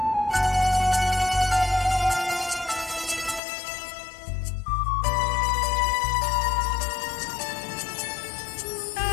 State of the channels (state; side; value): drops out; right; at 3.4 s